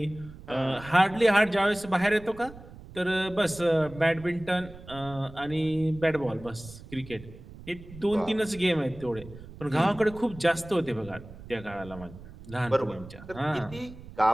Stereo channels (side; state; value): right; noise; rumble, 17 dB below the sound